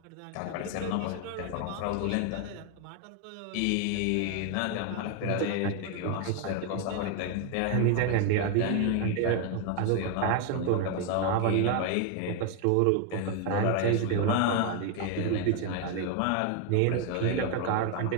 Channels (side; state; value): both; different; correlation 0.01